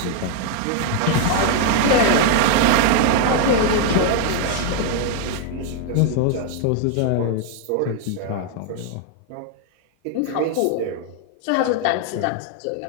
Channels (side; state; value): both; different; correlation 0.00